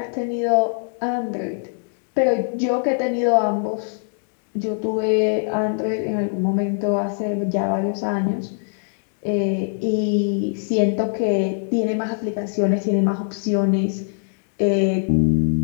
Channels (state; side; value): silent; right; digital silence